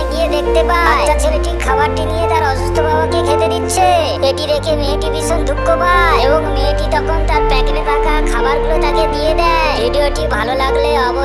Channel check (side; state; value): both; identical; correlation 1.00